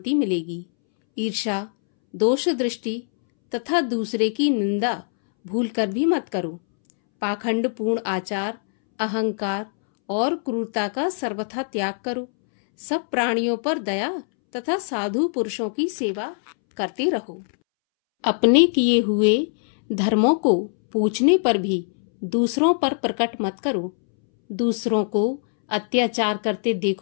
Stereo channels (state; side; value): silent; right; 64 dB below the other